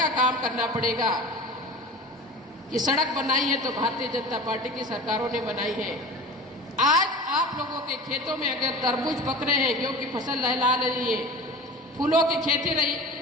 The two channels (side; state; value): both; normal; correlation 0.35